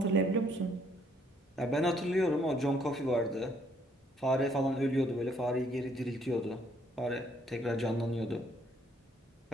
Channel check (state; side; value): normal; both; correlation 0.67